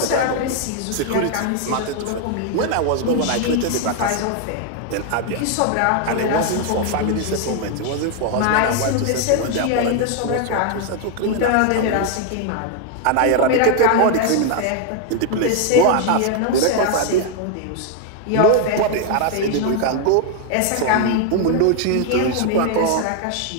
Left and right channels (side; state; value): both; different; correlation 0.01